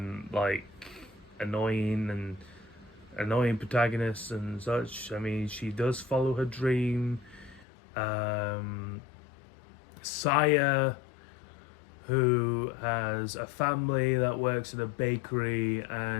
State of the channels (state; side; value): drops out; right; at 7.7 s